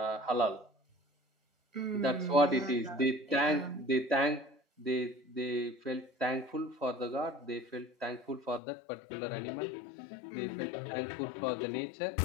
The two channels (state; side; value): drops out; right; at 8.6 s